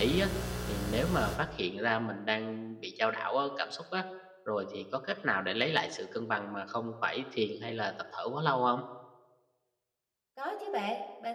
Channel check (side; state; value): both; identical; correlation 1.00